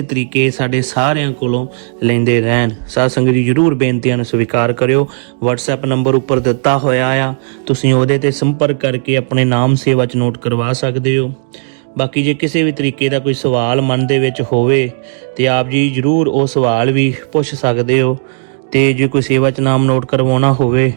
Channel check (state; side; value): silent; left; digital silence